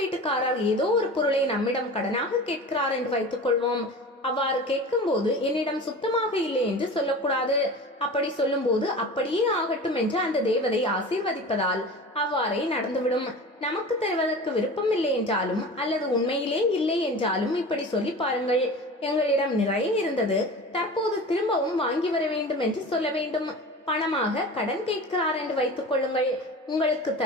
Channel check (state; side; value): normal; both; correlation 0.35